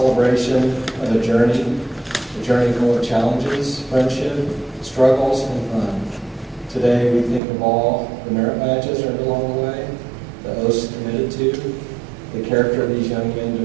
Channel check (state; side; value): drops out; left; at 7.4 s